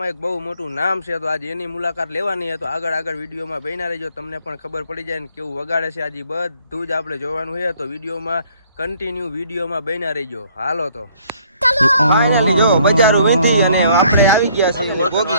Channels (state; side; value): inverted; both; correlation -0.62